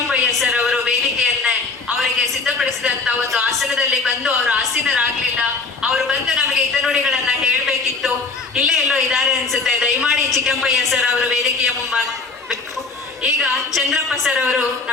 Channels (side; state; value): right; quieter; 4.0 dB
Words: ಸರ್ ಅವರು ವೇದಿಕೆಯನ್ನೇ ಅವರಿಗೆ ಸಿದ್ಧಪಡಿಸಿದಂತ ಒಂದು ಆಸನದಲ್ಲಿ ಬಂದು ಅವರು ಆಸೀನರಾಗ್ಲಿಲ್ಲ. ಅವರು ಬಂದು ನಮಗೆ ಹಿತನುಡಿಗಳನ್ನ ಹೇಳ್ಬೇಕಿತ್ತು. ಇಲ್ಲೇ ಎಲ್ಲೋ ಇದ್ದಾರೆ ಅನ್ಸುತ್ತೆ. ದಯಮಾಡಿ ಚಿಕ್ಕಂಪಯ್ಯ ಸರ್ ಅವರು ವೇದಿಕೆಯ ಮುಂಬಾಗಬೇಕು. ಈಗ ಚಂದ್ರಪ್ಪ ಸರ್ ಅವರು